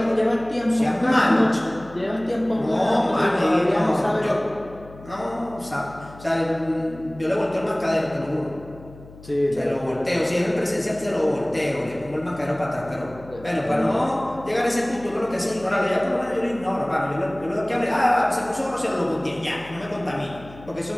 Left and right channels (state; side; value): noise; left; hum, 19 dB below the sound